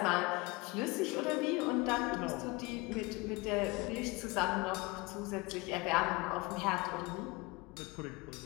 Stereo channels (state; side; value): quieter; right; 24.7 dB